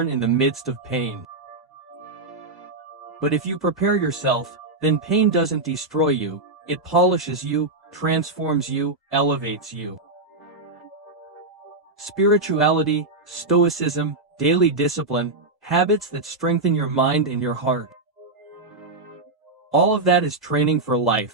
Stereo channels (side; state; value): left; quieter; 3.2 dB